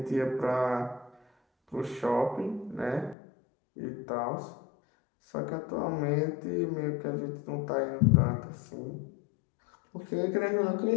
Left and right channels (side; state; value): right; drops out; at 3.2 s